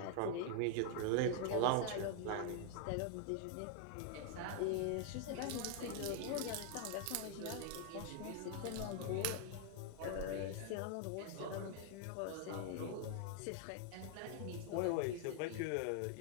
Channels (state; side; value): different; both; correlation 0.00